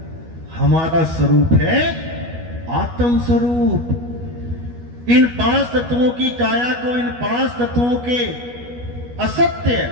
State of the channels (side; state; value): left; late; 12 ms